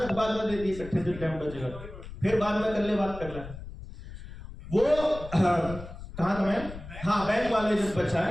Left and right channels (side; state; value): left; noise; rumble, 13 dB below the sound